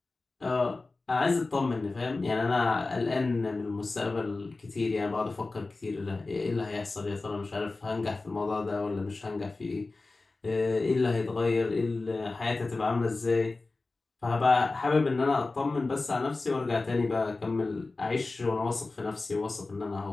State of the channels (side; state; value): right; quieter; 3.5 dB